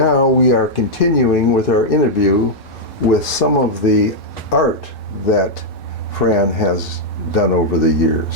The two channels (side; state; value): both; normal; correlation -0.04